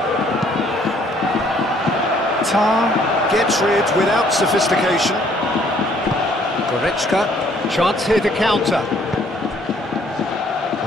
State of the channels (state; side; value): normal; both; correlation 0.62